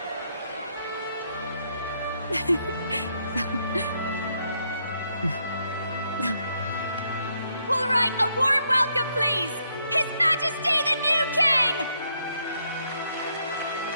All right, a warm welcome, please! His Majesty the new King!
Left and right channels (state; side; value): inverted; both; correlation -0.75